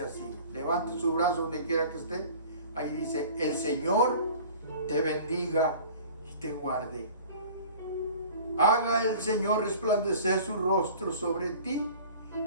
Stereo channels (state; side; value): inverted; both; correlation -0.44